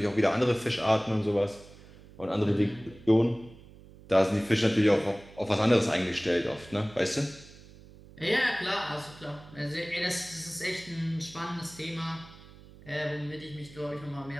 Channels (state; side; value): noise; right; hum, 21 dB below the sound